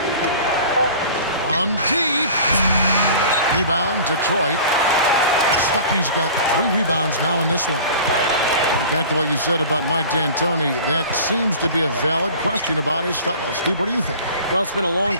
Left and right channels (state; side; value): inverted; both; correlation -0.42